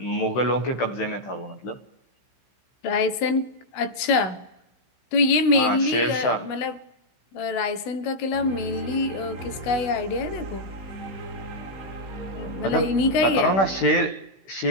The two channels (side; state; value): right; late; 16 ms